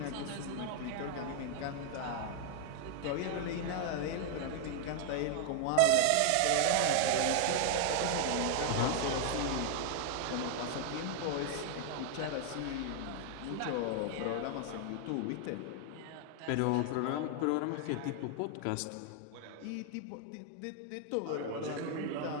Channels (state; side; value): different; both; correlation 0.00